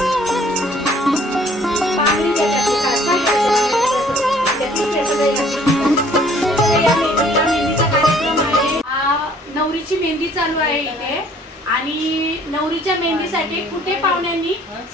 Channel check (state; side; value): normal; both; correlation 0.58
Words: नवरीची मेहंदी चालू आहे इथे आणि नवरीच्या मेहंदीसाठी कुठे पाहुण्यांनी